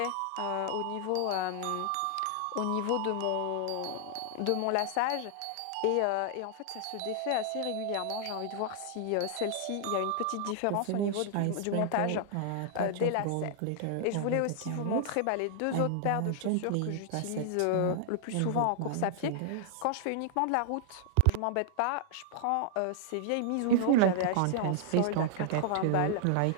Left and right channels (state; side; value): different; both; correlation -0.01